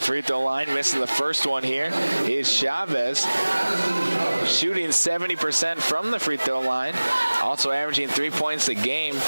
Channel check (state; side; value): inverted; both; correlation -1.00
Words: throw line, missing the first one here is Chavez, shooting 70% from the free throw line, also averaging 3 points a game.